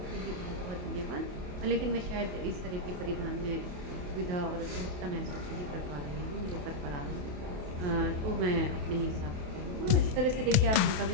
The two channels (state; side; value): late; left; 28 ms